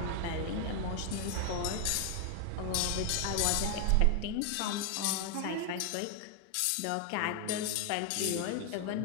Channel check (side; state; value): both; different; correlation 0.00